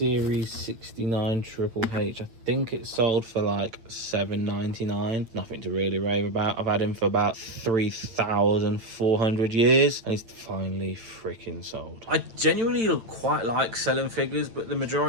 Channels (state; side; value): late; left; 8.9 ms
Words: 69 Triple H. I think it sold for like $7.99. Nothing to really rave about. I've had him for about 3,400 years, and he's finally freaking sold. I genuinely quite like selling figures, but the